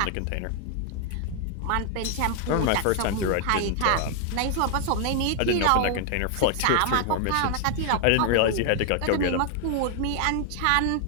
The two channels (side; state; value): both; different; correlation 0.00